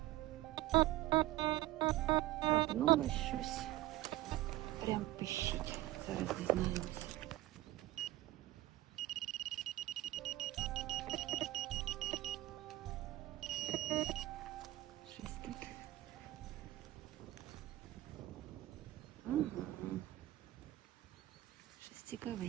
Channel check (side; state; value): left; quieter; 16.3 dB